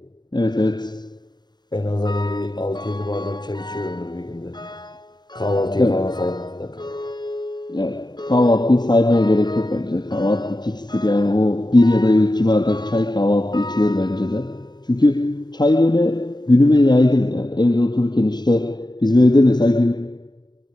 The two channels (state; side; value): late; right; 0.21 ms